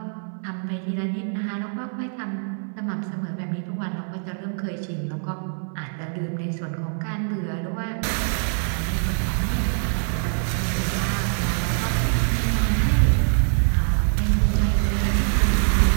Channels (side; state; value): left; silent; 63 dB below the other